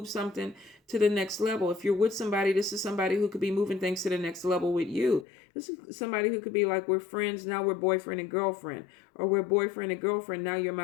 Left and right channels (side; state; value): right; drops out; at 5.2 s